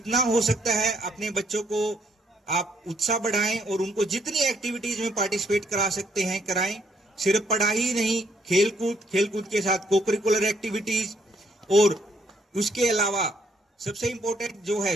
हो सकता है अपने बच्चों को आप उत्साह बढ़ाएं और उनको जितनी एक्टिविटीज में पार्टिसिपेट करा सकते हैं कराएं। सिर्फ पढ़ाई ही नहीं, खेलकूद के साथ कोकरिकुलर एक्टिविटीज, और उसके अलावा सबसे इंपॉर्टेंट जो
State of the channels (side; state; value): both; normal; correlation 0.69